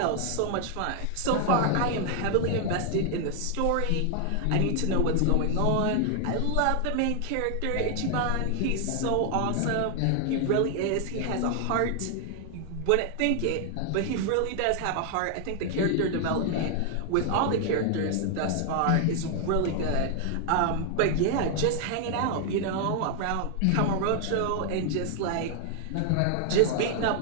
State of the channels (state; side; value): different; both; correlation 0.00